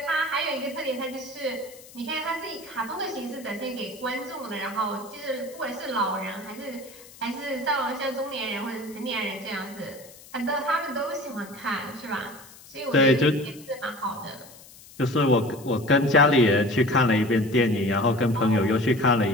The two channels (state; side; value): noise; left; hiss, 21 dB below the sound